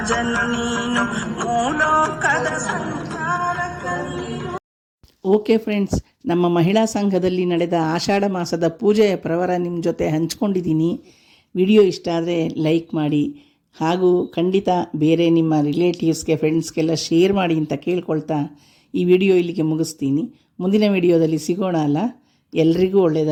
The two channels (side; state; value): both; identical; correlation 1.00